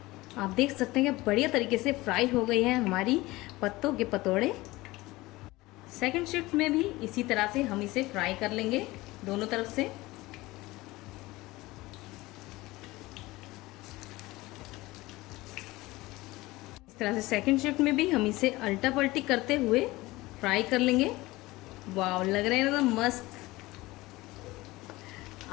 आप देख सकते हैं कि बढ़िया तरीके से फ्राई हो गई है हमारी पत्तों के पतोड़े। सेकंड शिफ्ट में भी इसी तरह से हम इसे फ्राई कर लेंगे दोनों तरफ से। तरह से सेकंड शिफ्ट में भी हम इसे अल्टा पल्टी करते हुए फ्राई कर लेंगे। वाव, लग रहे हैं एकदम मस्त,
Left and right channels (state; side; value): quieter; right; 19.9 dB